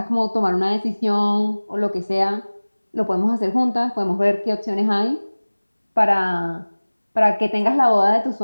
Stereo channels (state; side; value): inverted; both; correlation -1.00